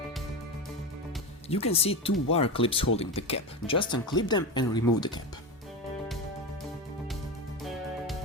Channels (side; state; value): both; normal; correlation 0.20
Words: You can see two wire clips holding the cap. Just unclip them and remove the cap.